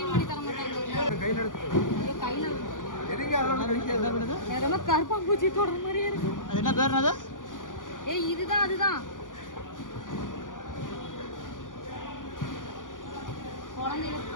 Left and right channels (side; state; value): right; late; 0.88 ms